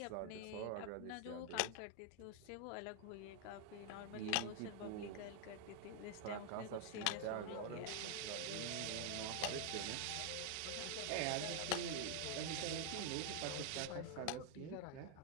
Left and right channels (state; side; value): different; both; correlation 0.00